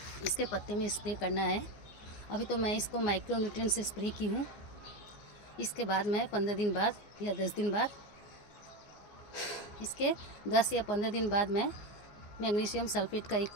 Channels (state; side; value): late; right; 14 ms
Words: इसके पत्ते में स्प्रे करना है। अभी तो मैं इसको माइक्रो न्यूट्रिएंट से स्प्रे की हूँ। इसके बाद मैं 15 दिन बाद या 10 दिन बाद, इसके 10 या 15 दिन बाद मैं मैग्नीशियम सल्फेट का 1